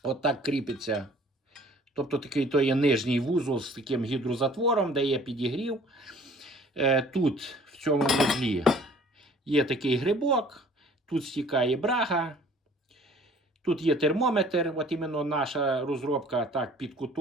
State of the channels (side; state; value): both; normal; correlation 0.53